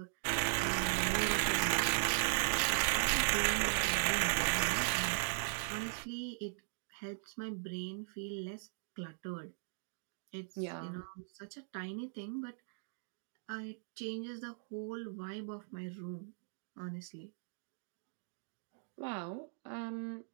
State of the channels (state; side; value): silent; left; digital silence